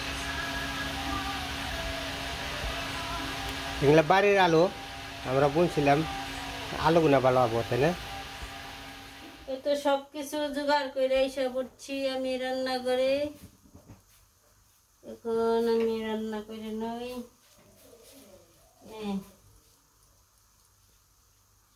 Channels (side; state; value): both; identical; correlation 1.00